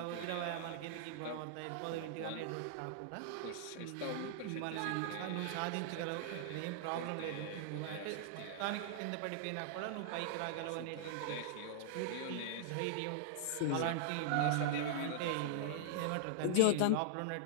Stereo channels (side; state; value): both; different; correlation -0.01